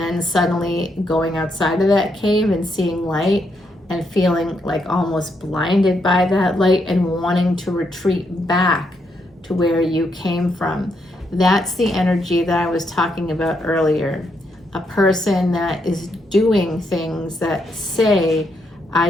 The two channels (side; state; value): both; normal; correlation 0.78